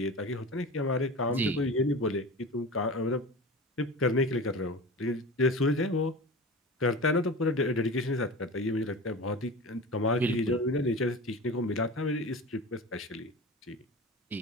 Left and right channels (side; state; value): both; normal; correlation 0.31